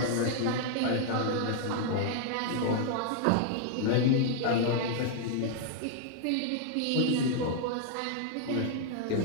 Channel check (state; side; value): different; both; correlation -0.01